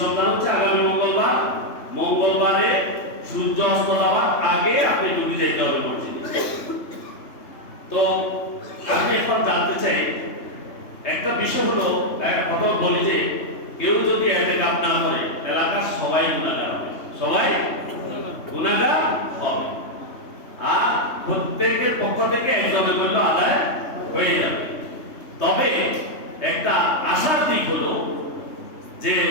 হচ্ছে আগামী মঙ্গলবার। মঙ্গলবারে সূর্য অস্ত যাওয়ার আগে আপনি ডুবে যেতে হবে মসজিদে। তো আমি এখন জানতে চাই একটা বিষয় হলো, একটা কথা বলি যে কেউ যদি ইতিকাফ না করে এলাকার সবাই গুনাহগার হবে, সবাই গুনাহগার হবে। আর প্রত্যেকের পক্ষ থেকে একজনের করলে আদায় হয়ে যাবে। তবে একটা আশার দিক হলো যে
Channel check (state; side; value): late; right; 3.3 ms